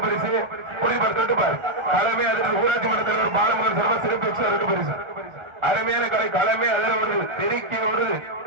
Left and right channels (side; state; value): left; late; 1.4 ms